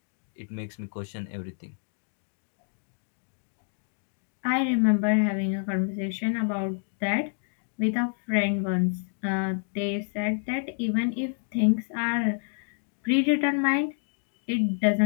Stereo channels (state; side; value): silent; right; 59 dB below the other